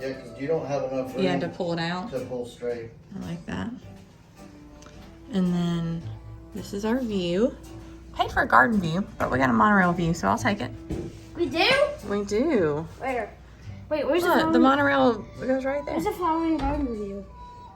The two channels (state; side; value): identical; both; correlation 1.00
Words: Yeah, because you don't have enough room You had to pull it out. to pull straight. I like that. And then this is our view. Paid for a garden view, but we got a monorail view, so I'll take it. We do? We do. Where? Wait, where's Look, the monorail goes right there. Where's the flowering garden view?